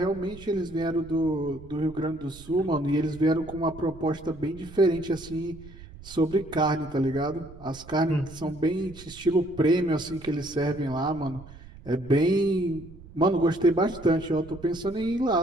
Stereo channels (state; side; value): noise; right; rumble, 18 dB below the sound